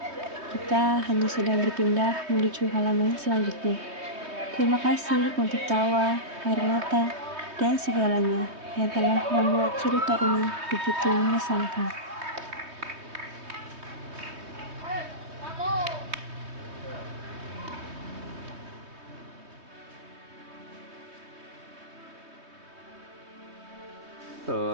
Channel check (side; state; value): left; late; 3.2 ms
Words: Kita hanya sedang berpindah menuju halaman selanjutnya. Terima kasih untuk tawa, air mata, dan segalanya yang telah membuat cerita ini begitu mengesankan.